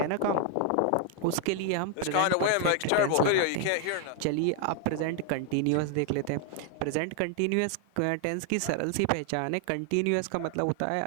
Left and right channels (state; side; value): different; both; correlation 0.00